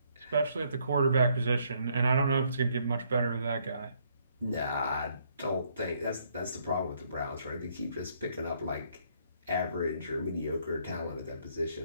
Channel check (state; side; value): inverted; both; correlation -0.69